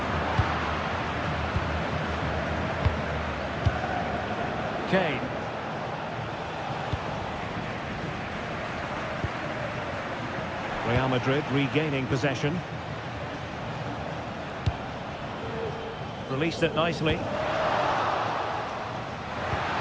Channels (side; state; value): both; identical; correlation 1.00